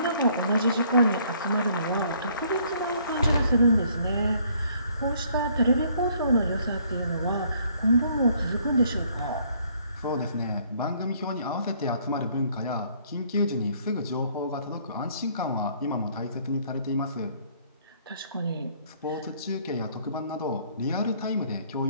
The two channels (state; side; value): inverted; both; correlation -0.63